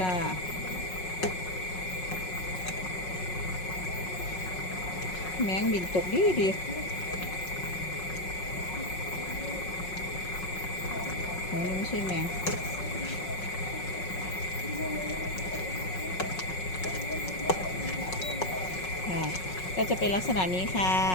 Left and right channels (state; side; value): late; right; 5.4 ms